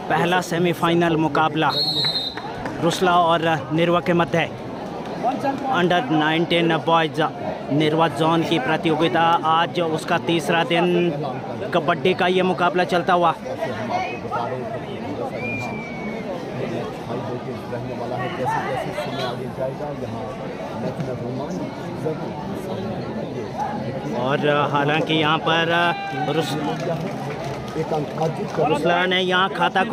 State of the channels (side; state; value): both; identical; correlation 1.00